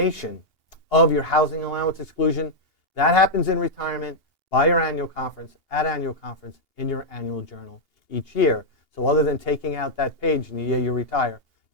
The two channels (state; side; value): late; right; 2.8 ms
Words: of your housing allowance exclusion, that happens in retirement by your annual conference, at annual conference, in your annual journal each year. So other than taking out that page in the year you retire,